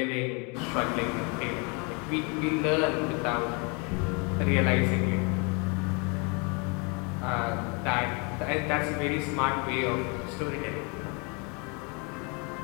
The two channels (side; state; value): right; quieter; 32.7 dB